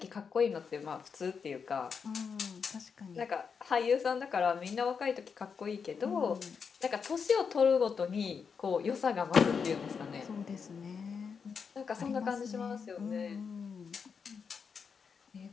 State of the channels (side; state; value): right; quieter; 6.0 dB